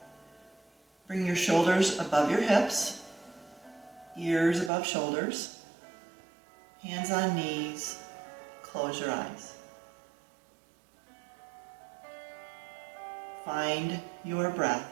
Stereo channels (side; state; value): left; drops out; at 4.7 s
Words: Bring your shoulders above your hips, ears above shoulders, hands on knees, close your eyes. Find your